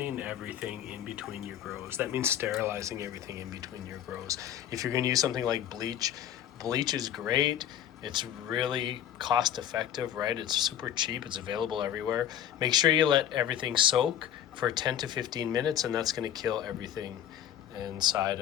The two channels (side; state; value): right; quieter; 10.4 dB